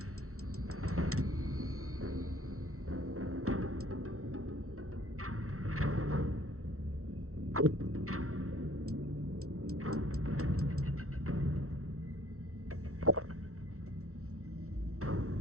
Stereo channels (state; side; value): late; left; 0.63 ms